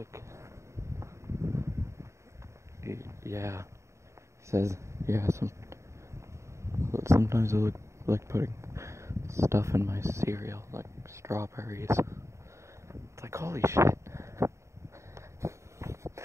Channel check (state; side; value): late; left; 0.14 ms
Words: yeah. He says, yeah, sometimes I like putting stuff in my cereal, like strawberries. It's like, holy shit.